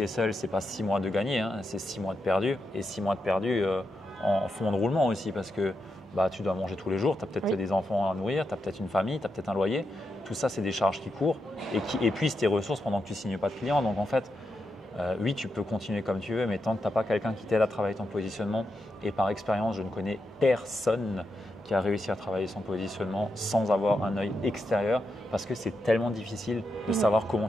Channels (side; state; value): both; normal; correlation 0.85